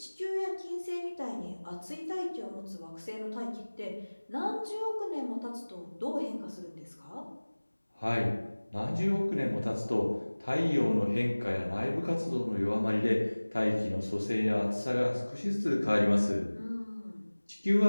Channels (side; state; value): both; inverted; correlation -1.00